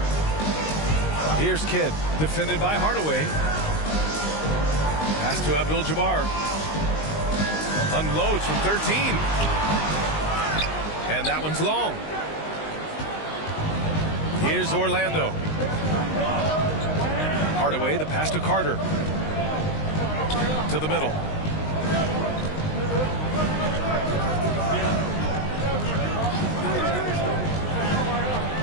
Here's Kidd, defended by Hardaway. Pass to Abdul-Jabbar. Unloads from 13. And that one's long. Here's Orlando. Hardaway, the pass to Carter. To the middle.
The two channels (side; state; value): right; late; 19 ms